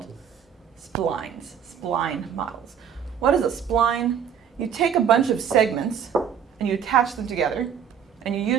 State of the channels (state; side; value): quieter; left; 8.2 dB